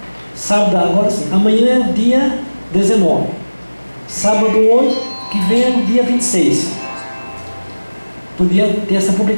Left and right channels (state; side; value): inverted; both; correlation -1.00